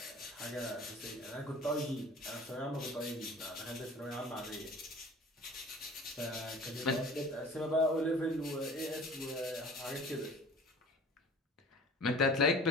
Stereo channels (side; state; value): both; normal; correlation 0.44